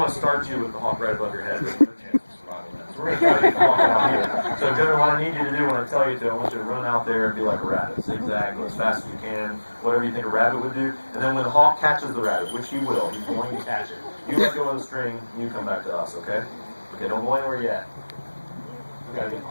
to start you with the hawk right above your head. There's no chance of survival in that. So we're going to try to get the hawk out here. So Jonah, what I need you to do when I tell you to, I want you to run out there and be like a rabbit. Zigzag, go as fast as you can, whatever you think a rabbit would do. And then when the hawk catches the rabbit, which he will, he's going to catch it. You let go of the string, and you come back to us, okay? Okay, don't go anywhere yet. We got to get the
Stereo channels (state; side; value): inverted; both; correlation -1.00